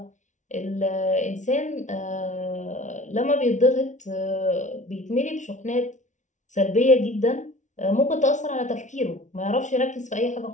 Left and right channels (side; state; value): right; late; 0.36 ms